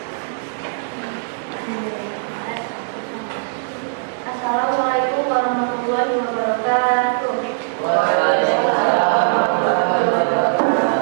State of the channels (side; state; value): left; silent; 63 dB below the other